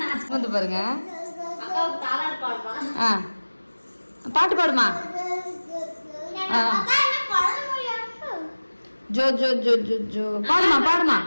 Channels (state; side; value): inverted; both; correlation -1.00